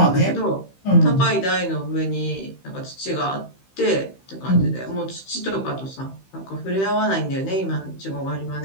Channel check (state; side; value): late; right; 15 ms